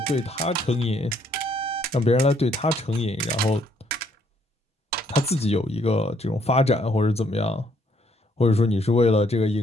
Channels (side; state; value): both; normal; correlation 0.68